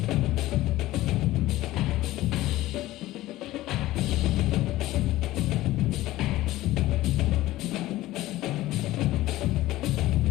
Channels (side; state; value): right; quieter; 16.5 dB